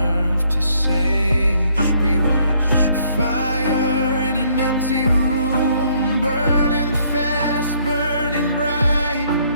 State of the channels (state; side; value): inverted; both; correlation -0.66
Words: to say. We were fire in an empty room, burning fast, burning bright.